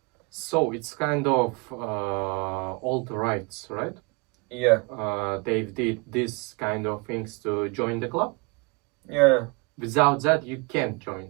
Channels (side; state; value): left; quieter; 29.5 dB